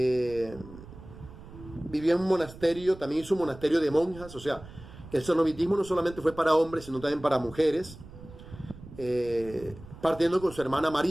Vivía en un monasterio, también hizo un monasterio de monjas. O sea, el cenobitismo no solamente fue para hombres, sino también para mujeres. Partiendo con su hermana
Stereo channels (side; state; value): right; noise; rumble, 17 dB below the sound